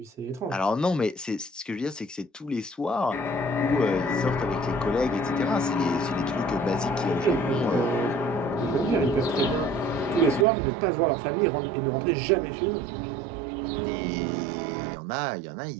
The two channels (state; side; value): drops out; left; at 10.5 s